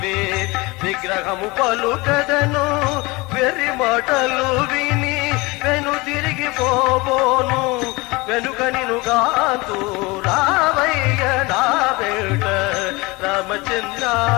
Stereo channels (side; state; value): right; quieter; 24.0 dB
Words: విగ్రహము పలుకదను వెర్రి మాటలు విని వెను తిరిగి పోబోను వెనుక నినుగాంతు రావయ్య నా వేట రామచంద్ర.